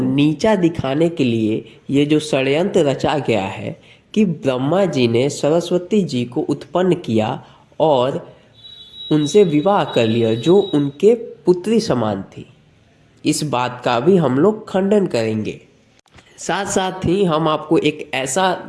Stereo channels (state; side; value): identical; both; correlation 1.00